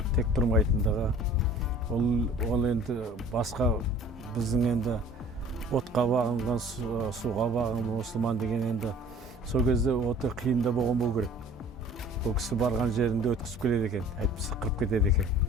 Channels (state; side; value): normal; both; correlation 0.49